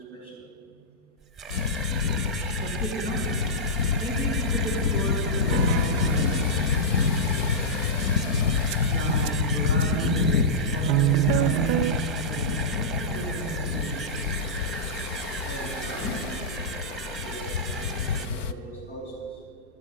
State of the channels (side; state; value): both; normal; correlation -0.14